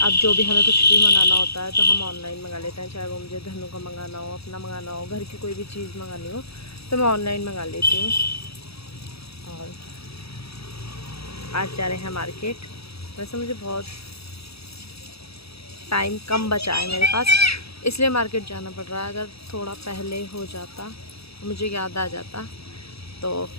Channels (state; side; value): late; right; 0.77 ms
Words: जो भी हमें कुछ भी मंगाना होता है तो हम ऑनलाइन मंगा लेते हैं, चाहे वो मुझे धनु का मंगाना हो, अपना मंगाना हो, घर की कोई भी चीज़ मंगानी हो तो मैं ऑनलाइन मंगा लेती हूँ। और आज जा रहे हैं मार्केट। वैसे मुझे बहुत टाइम कम बचा है मेरे पास, इसलिए मार्केट जाना पड़ रहा है। अगर थोड़ा पहले हो जाता, मुझे याद आ जाता, तो